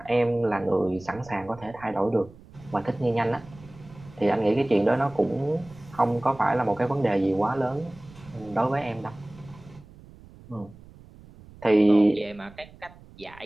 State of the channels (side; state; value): right; noise; rumble, 21 dB below the sound